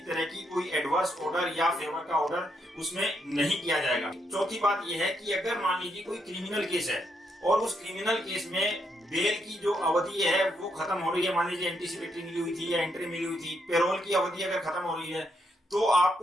तरह की कोई एडवर्स ऑर्डर या फेवर का ऑर्डर उसमें नहीं किया जाएगा। चौथी बात यह है कि अगर मान लीजिए कोई क्रिमिनल केस है और उस क्रिमिनल केस में बेल की जो अवधि है वो खत्म हो रही है, मान लीजिए एंटीसिपेटरी मिली हुई थी या एंट्री मिली हुई थी, पेरोल की अवधि अगर खत्म हो रही है, तो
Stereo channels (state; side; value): normal; both; correlation 0.78